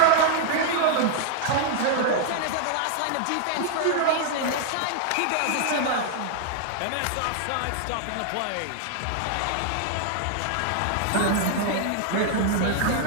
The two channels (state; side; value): different; both; correlation 0.00